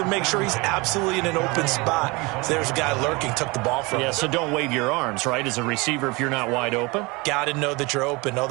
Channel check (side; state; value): left; quieter; 25.4 dB